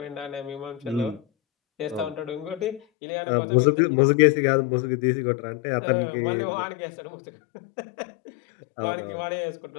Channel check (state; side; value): drops out; right; at 2.8 s